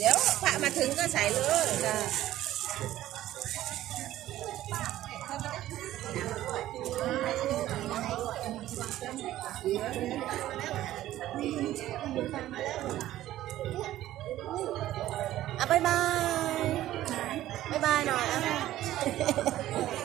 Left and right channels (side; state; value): left; quieter; 14.1 dB